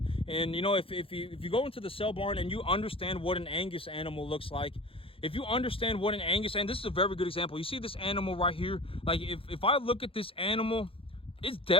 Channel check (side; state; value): right; late; 0.27 ms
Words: And if you go into the sale barn and you understand what an Angus animal looks like, if you understand what an Angus, and this is a very good example. You see this animal right here? Like if I look at this animal, it's